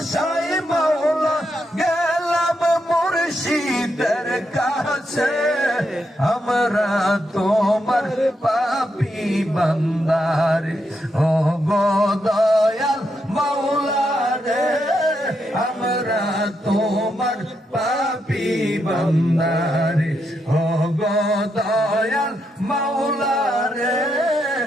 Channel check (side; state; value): both; normal; correlation 0.81